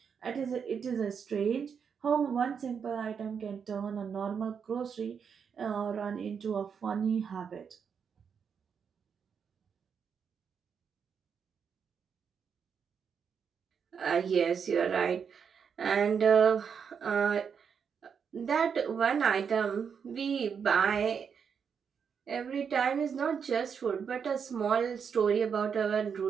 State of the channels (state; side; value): quieter; left; 6.8 dB